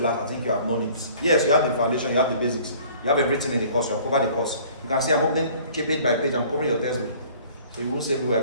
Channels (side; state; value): both; inverted; correlation -0.52